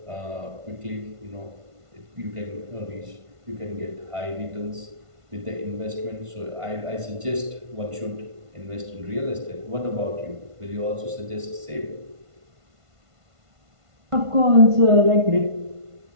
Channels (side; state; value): left; late; 1.5 ms